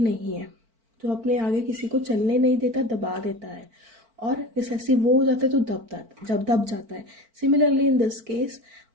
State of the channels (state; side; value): late; left; 4.5 ms